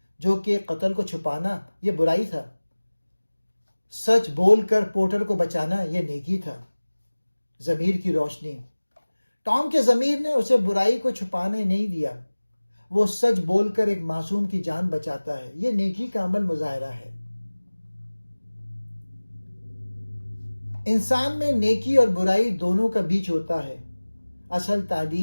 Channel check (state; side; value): inverted; both; correlation -1.00